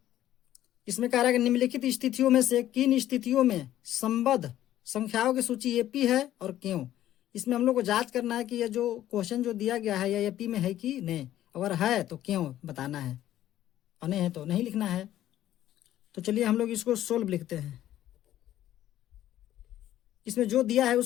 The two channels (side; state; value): right; quieter; 12.9 dB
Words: इसमें कह रहा है कि निम्नलिखित स्थितियों में से किन स्थितियों में संबद्ध संख्याओं की सूची AP है और क्यों। इसमें हम लोग को जांच करना है कि यह जो क्वेश्चन जो दिया गया है यह AP में है कि नहीं, अगर है तो क्यों बताना है, और नहीं है तो नहीं लिखना है। तो चलिए हम लोग इसको सोल्व लिखते हैं। इसमें जो दिया है